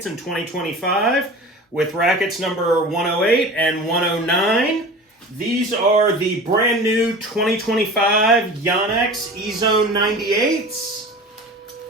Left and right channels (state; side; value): normal; both; correlation 0.37